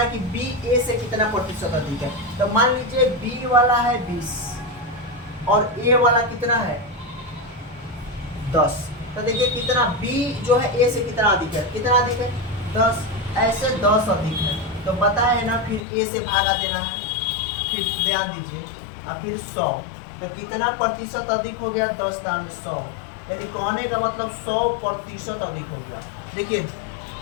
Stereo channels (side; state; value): right; drops out; at 15.8 s